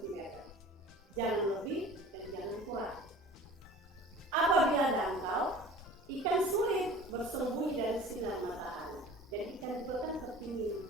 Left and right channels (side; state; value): both; normal; correlation 0.42